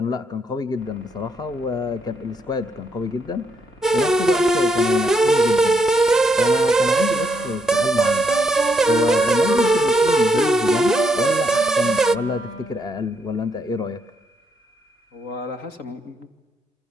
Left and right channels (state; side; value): normal; both; correlation 0.76